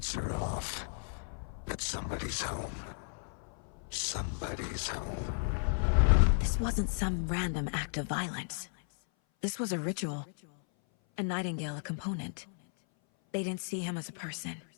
are off. But somebody's home. Somebody's home. This wasn't some random act of violence. This was a ritual. And Nightingale a component. They didn't see him as a person.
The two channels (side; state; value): right; silent; 55 dB below the other